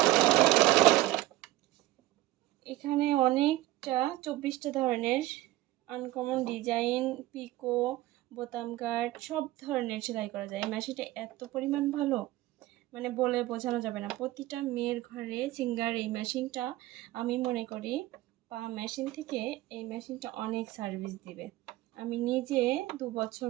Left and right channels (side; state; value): left; quieter; 16.6 dB